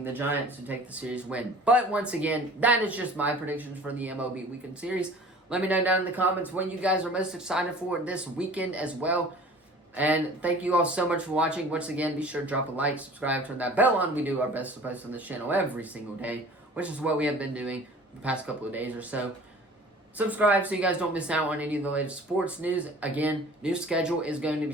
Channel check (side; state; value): both; normal; correlation 0.46